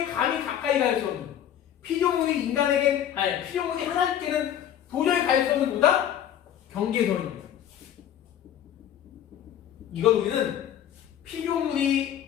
감히 가까이 갈 수 없는 피조물이 하나님께는 도저히 갈 수 없는 뭐다? 경계선입니다. 이걸 우리는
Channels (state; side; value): quieter; right; 10.3 dB